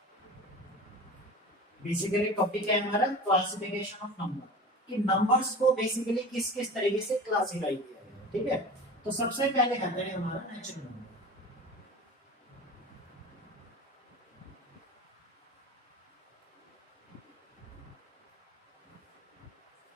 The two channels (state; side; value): normal; both; correlation 0.35